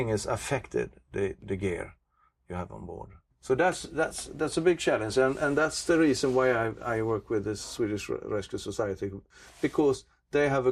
is affected, the gear you have on board. So that's a big challenge, and that's the reason why I work with the Swedish Rescue Society, because they have a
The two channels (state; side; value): identical; both; correlation 1.00